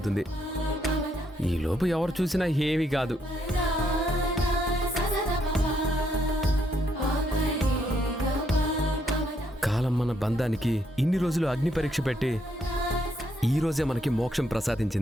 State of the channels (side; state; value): both; normal; correlation 0.74